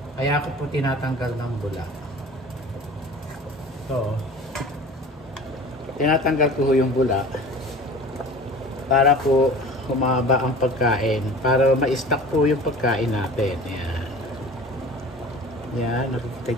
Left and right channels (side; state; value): both; normal; correlation 0.40